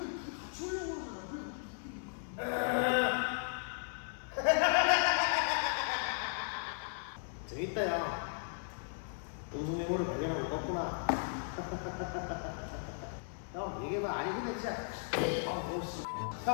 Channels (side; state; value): right; silent; 54 dB below the other